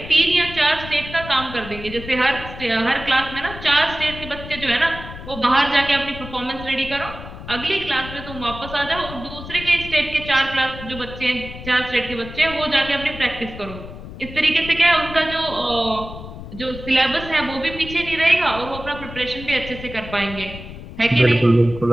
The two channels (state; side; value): noise; left; rumble, 12 dB below the sound